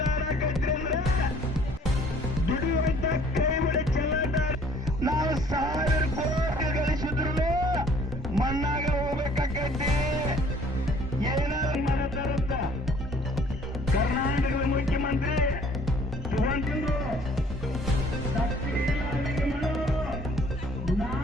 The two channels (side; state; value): both; normal; correlation 0.57